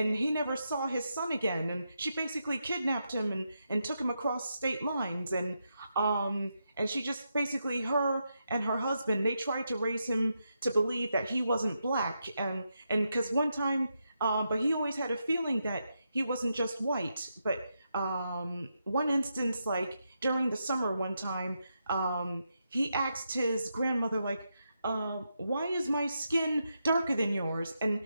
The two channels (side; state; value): both; inverted; correlation -0.84